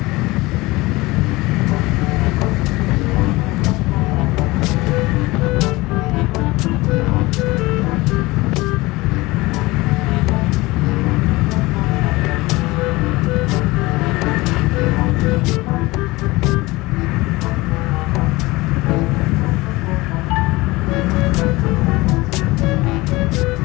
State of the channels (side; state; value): right; quieter; 21.2 dB